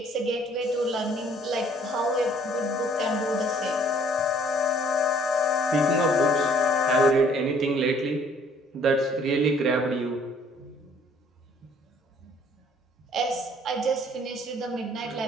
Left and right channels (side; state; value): both; normal; correlation 0.59